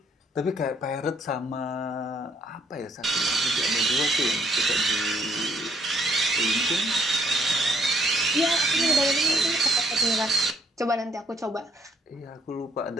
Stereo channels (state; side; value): normal; both; correlation 0.67